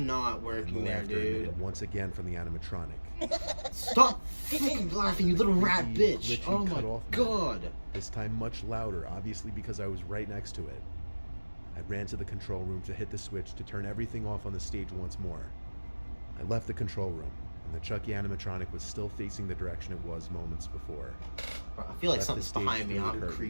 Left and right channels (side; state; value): both; inverted; correlation -1.00